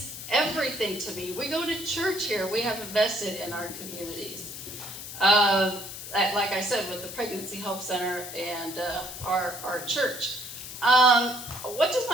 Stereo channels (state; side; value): noise; left; hiss, 10 dB below the sound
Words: everything to me. We go to church here. We have invested in our communities. Like I said, with the Pregnancy Help Center and our church. What does